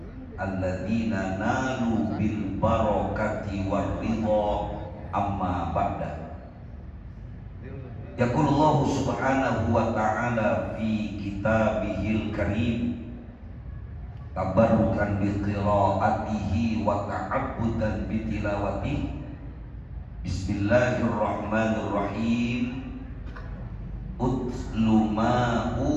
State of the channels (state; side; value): identical; both; correlation 1.00